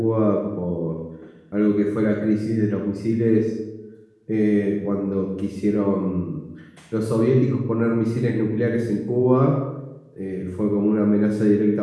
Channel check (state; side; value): identical; both; correlation 1.00